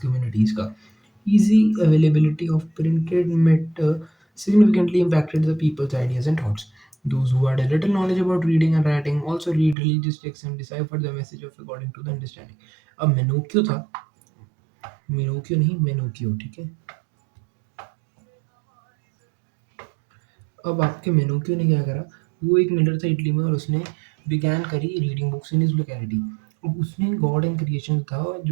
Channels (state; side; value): drops out; left; at 9.8 s